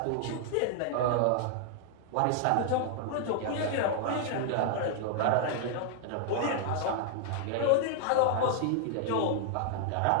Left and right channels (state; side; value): different; both; correlation 0.00